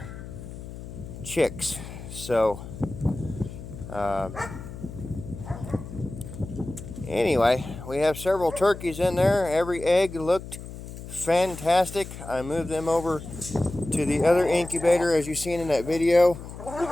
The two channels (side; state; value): left; noise; hum, 12 dB below the sound